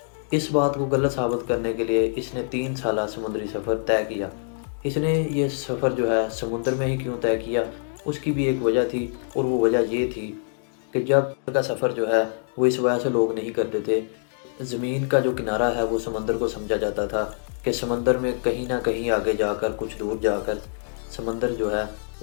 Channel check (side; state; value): right; silent; digital silence